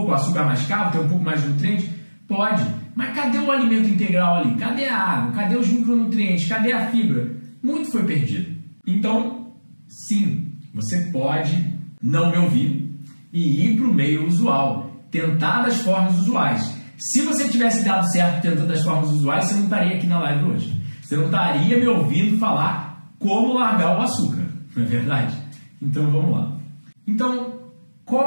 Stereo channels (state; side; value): inverted; both; correlation -1.00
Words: o açúcar mascavo, ter um pouco mais de nutrientes? Pode. Mas cadê o alimento integral ali? Cadê a água? Cadê os micronutrientes? Cadê a fibra? Muito foi perdido. Então, sim, você pode não me ouvir e ir para o meio usual, tentar das formas usuais. Se você tivesse dado certo tentando das formas usuais, você não estaria aqui na live hoje. Você não estaria me ouvindo falar como largar o açúcar, não é verdade? Então vamos lá. Então,